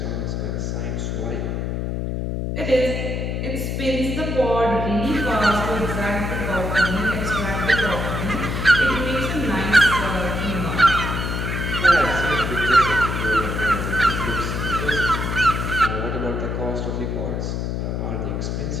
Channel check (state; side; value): noise; left; hum, 2 dB below the sound